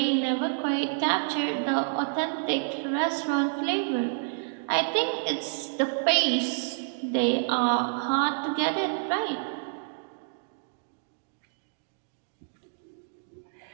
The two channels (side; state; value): left; silent; digital silence